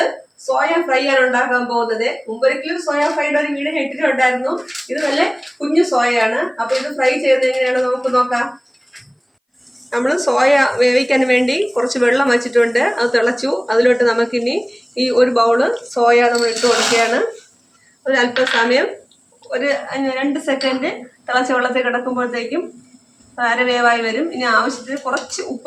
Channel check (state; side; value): identical; both; correlation 1.00